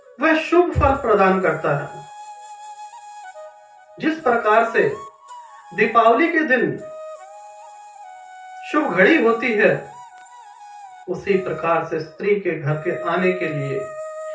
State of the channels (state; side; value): identical; both; correlation 1.00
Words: वह शुभ फल प्रदान करता है। जिस प्रकार से दीपावली के दिन शुभ घड़ी होती है, उसी प्रकार से स्त्री के घर के आने के लिए